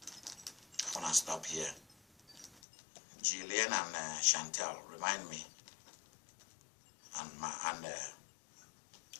I want to stop here. Jillian and Chantel, remind me. And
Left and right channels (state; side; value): drops out; right; at 2.6 s